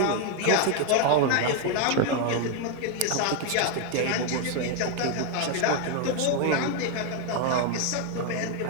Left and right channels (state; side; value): different; both; correlation 0.01